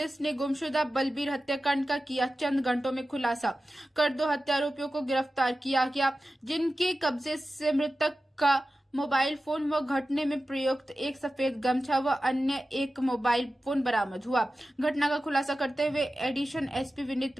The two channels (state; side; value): normal; both; correlation 0.94